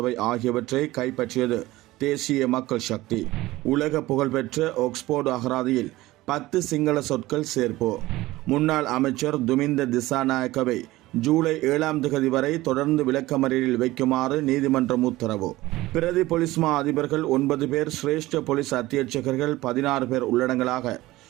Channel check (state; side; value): quieter; left; 18.0 dB